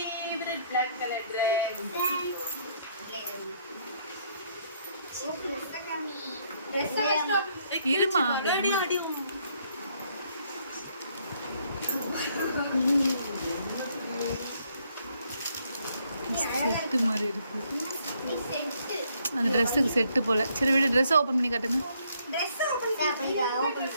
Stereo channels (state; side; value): inverted; both; correlation -0.69